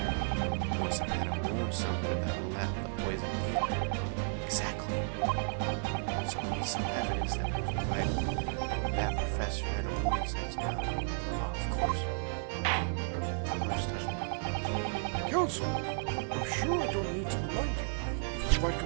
he must have had a wound somewhere that let the poison in. Exactly. So we need some evidence that would provide that professor had a wound inside his mouth. Oh, of course. Just touch me. Counsel, I'm sure I don't need to remind you. You provide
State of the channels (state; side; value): silent; left; 56 dB below the other